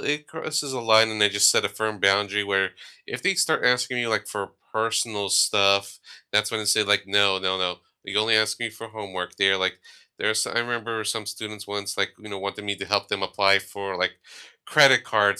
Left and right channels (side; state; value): both; identical; correlation 1.00